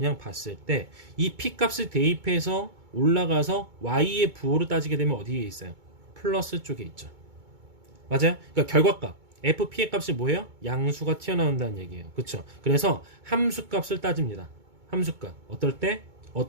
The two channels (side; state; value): left; late; 2.2 ms